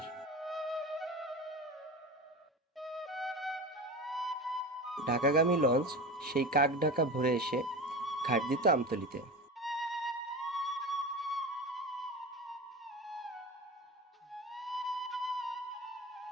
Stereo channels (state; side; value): normal; both; correlation 0.29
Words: ঢাকাগামী লঞ্চ সেই কাক ঢাকা ভোরে এসে ঘাট দিত আমতলীতে।